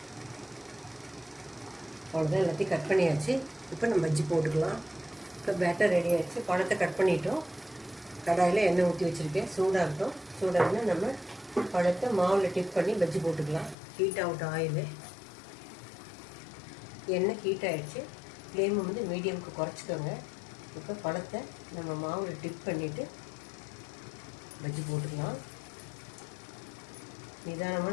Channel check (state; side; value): drops out; right; at 13.8 s